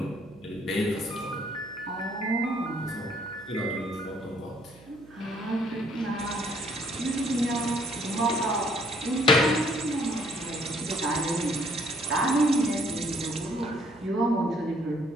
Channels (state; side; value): noise; right; hum, 23 dB below the sound